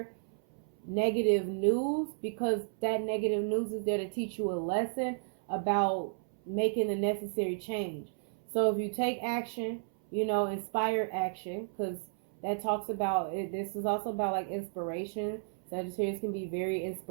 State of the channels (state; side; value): silent; left; 56 dB below the other